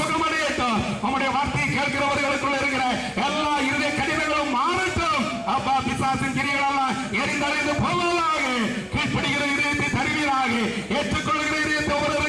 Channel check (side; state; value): both; identical; correlation 1.00